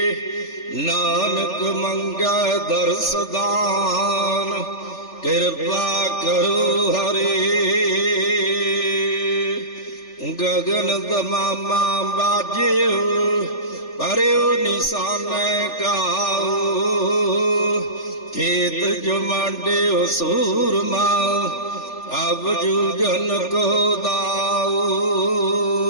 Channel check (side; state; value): right; late; 3.4 ms